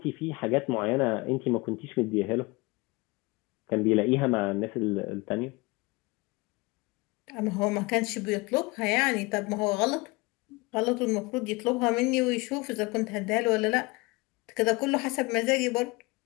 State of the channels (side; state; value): right; quieter; 24.6 dB